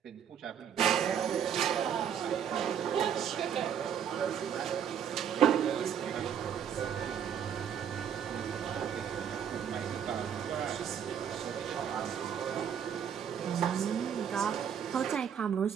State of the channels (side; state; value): left; quieter; 8.4 dB